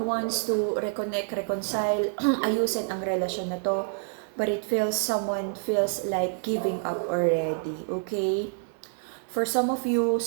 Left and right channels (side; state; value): left; silent; 60 dB below the other